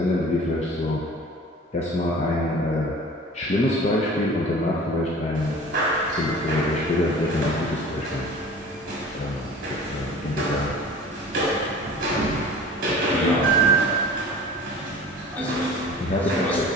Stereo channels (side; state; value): both; normal; correlation 0.42